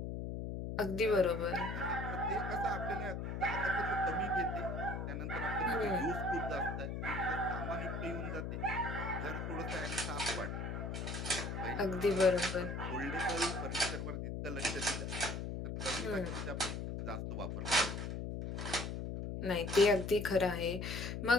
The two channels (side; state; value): left; noise; hum, 4 dB below the sound